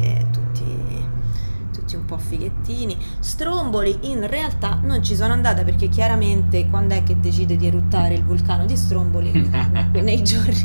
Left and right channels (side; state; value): both; inverted; correlation -1.00